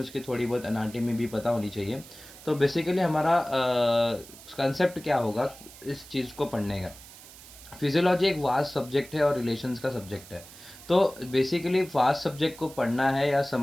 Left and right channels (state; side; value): noise; right; hiss, 18 dB below the sound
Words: उसकी थोड़ी बहुत एनाटॉमी भी पता होनी चाहिए। तो बेसिकली हमारा कंसेप्ट क्या होगा इस चीज़ को पढ़ने का। फिजियोलॉजी एक वास्ट सब्जेक्ट है और रिलेशंस का सब्जेक्ट है। तो बेसिकली वास्ट सब्जेक्ट को पढ़ना है या